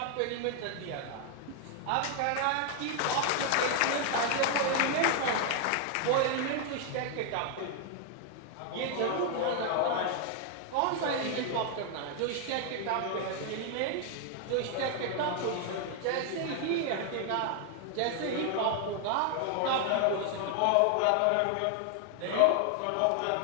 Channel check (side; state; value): both; different; correlation 0.00